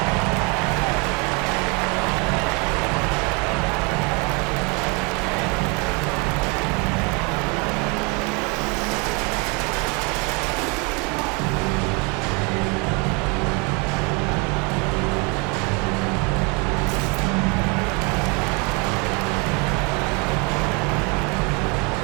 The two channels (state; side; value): quieter; left; 31.1 dB